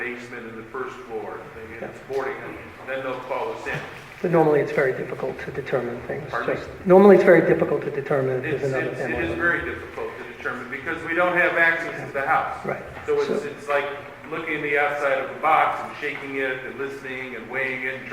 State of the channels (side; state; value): both; identical; correlation 1.00